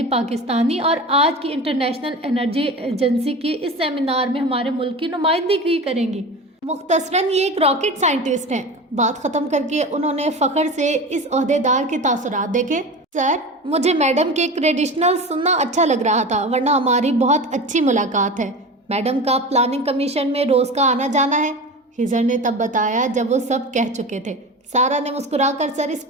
پاکستانی، اور آج کی انٹرنیشنل انرجی ایجنسی کی اس سیمینار میں ہمارے ملک کی نمائندگی کریں گی۔ مختصراً یہ ایک راکٹ سائنٹسٹ ہیں۔ بات ختم کر کے انہوں نے فخر سے اس عہدیدار کے تاثرات دیکھے۔ سر، مجھے میڈم کے کریڈیشنل سننا اچھا لگ رہا تھا، ورنہ ہماری بہت اچھی ملاقات ہے۔ میڈم کا پلاننگ کمیشن میں روز کا آنا جانا ہے، خضر نے تب بتایا جب وہ سب کہہ چکے تھے۔ سارا نے مسکرا کر سر اس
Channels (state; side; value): normal; both; correlation 0.30